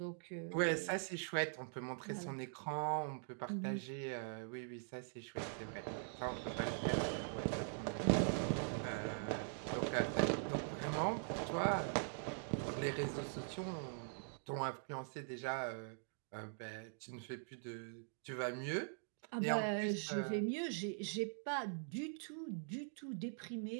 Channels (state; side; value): silent; left; digital silence